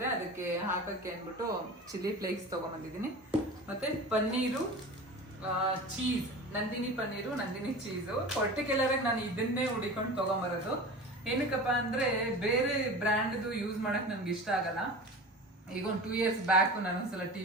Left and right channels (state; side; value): normal; both; correlation 0.34